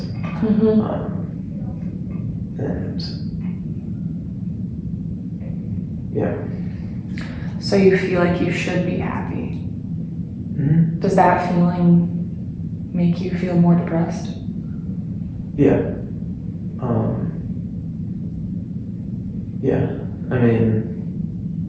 And yeah. So you feel like you should be happy. Mm-hmm. Does that feeling make you feel more depressed? Yeah. Yeah. I mean,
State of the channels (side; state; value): both; identical; correlation 1.00